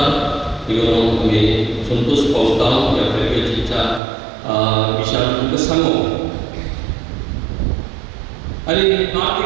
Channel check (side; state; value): left; drops out; at 4.0 s